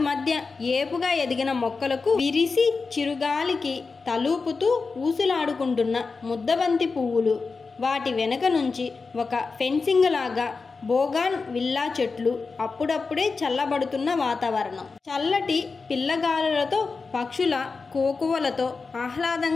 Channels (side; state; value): right; quieter; 4.4 dB